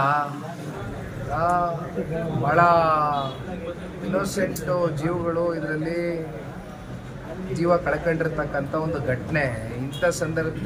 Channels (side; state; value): both; identical; correlation 1.00